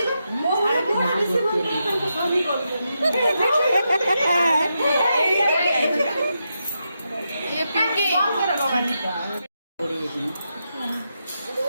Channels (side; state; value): both; inverted; correlation -0.85